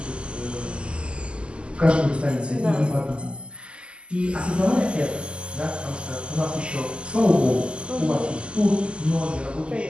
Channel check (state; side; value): late; left; 0.052 ms